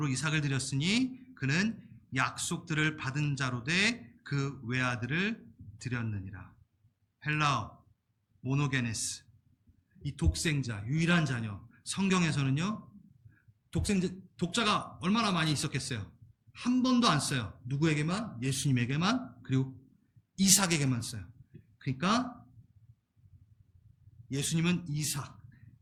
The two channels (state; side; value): identical; both; correlation 1.00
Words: 이삭을 드렸으니 그는 약속들을 받은 자로 돼 그 외아들을 드렸느니라. 헬라어 모노게네스, 이 독생자, 유일한 자녀. 성경에서는요, 독자가 얼마나 많이 있었겠어요? 한 번도 안 써요. 누구에게만? 예수님에게만, 그리고 이삭에게만 써요. 그러니까 예수님은 이삭,